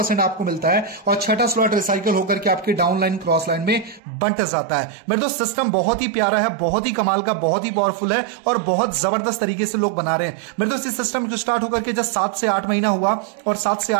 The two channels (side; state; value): left; drops out; at 4.0 s